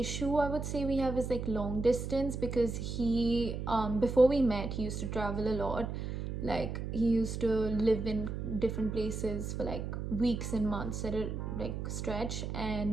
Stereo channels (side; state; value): right; noise; hum, 4 dB below the sound